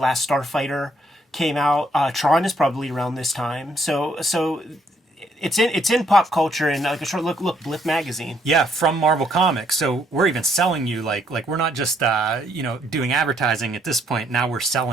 Starfighter came out. Tron is probably around this time. So it's in pop culture, and like a short look, Blip magazine. Yeah, from Marvel Comics. So we're even selling you like we're not just doing advertising at this point. Now we're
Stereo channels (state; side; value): normal; both; correlation 0.69